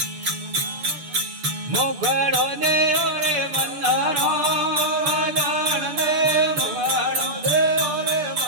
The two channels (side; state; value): left; late; 6.9 ms